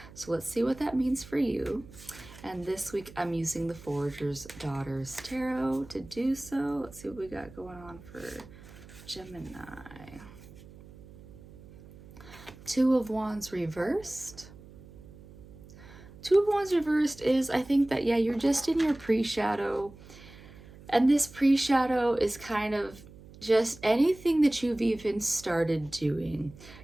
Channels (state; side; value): noise; right; hum, 19 dB below the sound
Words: So let's see what that means for you. And this week I'm using the Forager's Daughters Tarot to do so. Let's see what we got going on for Gemini. Two of Wands reversed. Two of Wands reversed is, I think that, you're just in your pre-shadow. And this pre-shadow is kind of just anything that you've even started doing.